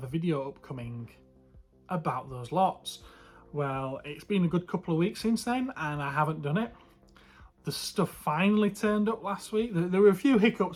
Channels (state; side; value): identical; both; correlation 1.00